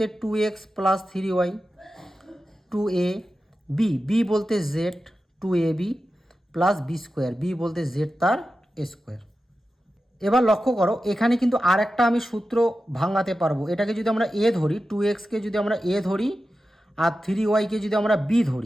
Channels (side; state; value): both; normal; correlation 0.92